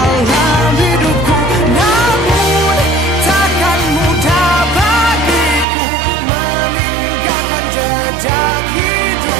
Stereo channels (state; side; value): drops out; left; at 5.7 s